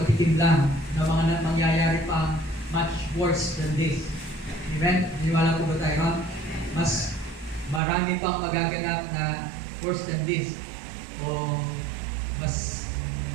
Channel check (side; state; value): left; drops out; at 7.8 s